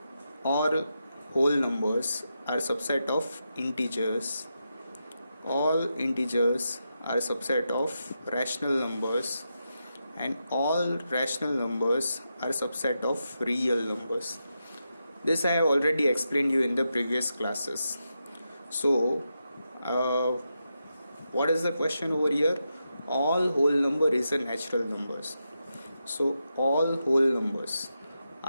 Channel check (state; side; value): inverted; both; correlation -0.86